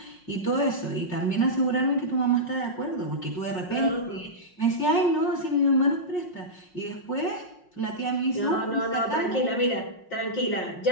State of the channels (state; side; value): late; right; 5.5 ms